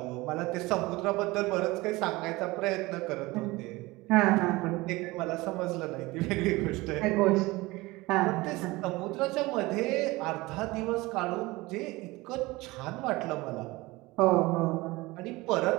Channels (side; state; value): left; quieter; 21.3 dB